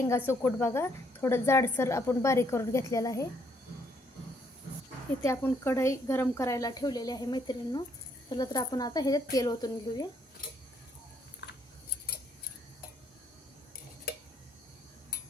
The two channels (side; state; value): both; normal; correlation 0.70